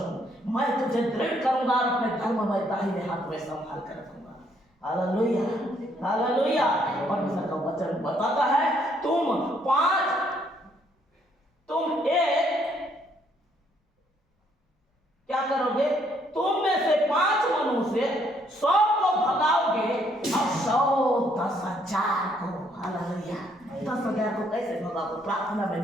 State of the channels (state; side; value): normal; both; correlation 0.69